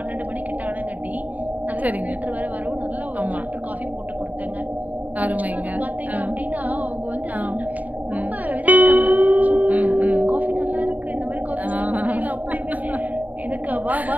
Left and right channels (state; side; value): late; left; 0.075 ms